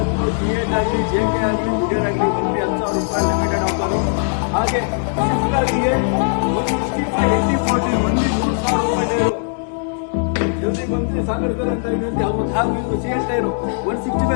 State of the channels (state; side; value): silent; right; digital silence